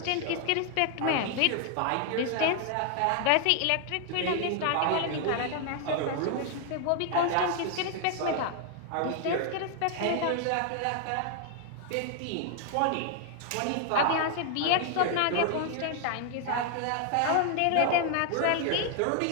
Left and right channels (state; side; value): different; both; correlation 0.00